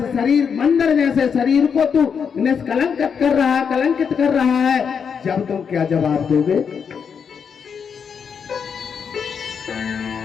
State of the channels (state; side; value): quieter; right; 6.7 dB